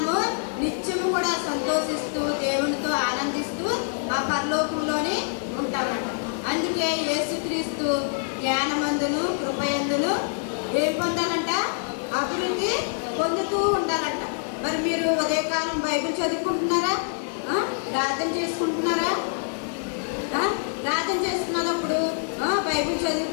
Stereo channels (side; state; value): right; silent; digital silence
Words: నిత్యము కూడా సంతోషిస్తూ దేవునితో ఆనందిస్తూ ఆ పరలోకంలోనే ఉంటామంట. అందుకే యేసుక్రీస్తు జ్ఞానమందును కృపయందును ఏం పొందాలంట? అభివృద్ధి పొందుతూ ఉండాలంట. మరి మీరు ఉదయకాలం బైబిల్ చదువుకుంటున్నారా? ప్రార్థన చేసుకుంటున్నారా? ప్రార్థన చేసుకున్నప్పుడు బైబిల్